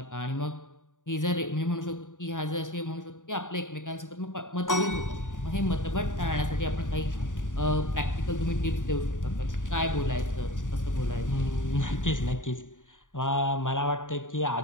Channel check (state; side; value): late; right; 0.87 ms